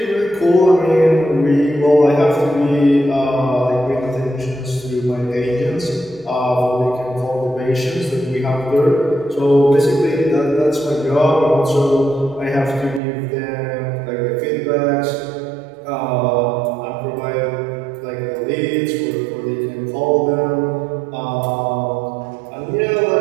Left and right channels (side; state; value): left; drops out; at 13.0 s